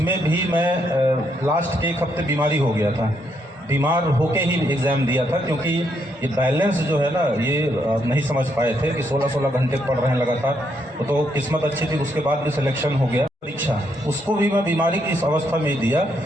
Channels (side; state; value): both; normal; correlation 0.75